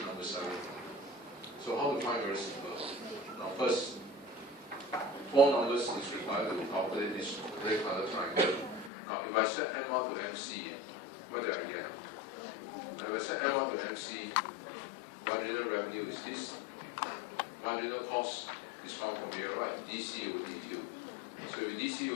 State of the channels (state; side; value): drops out; right; at 8.9 s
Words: number 7. So how to find? Very simple. Now first, 4 numbers is required to calculate this red color triangle. Now if I set M1 to MC, what do I get? If I set M1 to MC, marginal revenue is this. Marginal cost is found from here, right? DC over DQ. So with DC